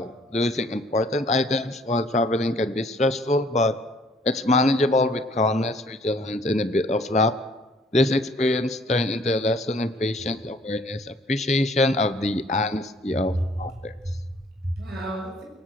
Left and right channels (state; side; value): normal; both; correlation 0.59